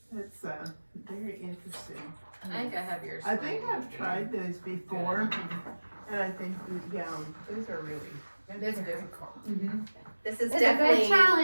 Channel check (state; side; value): inverted; both; correlation -1.00